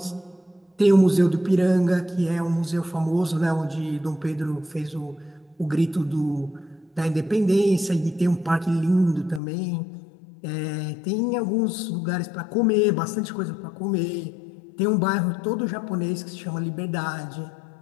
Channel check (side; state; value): right; drops out; at 9.4 s